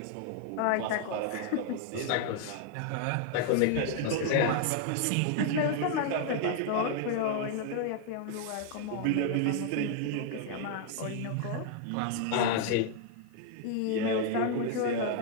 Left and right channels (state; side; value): different; both; correlation 0.00